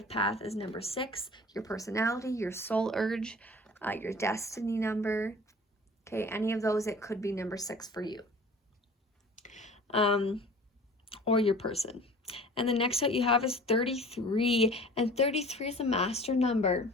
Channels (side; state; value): both; normal; correlation 0.44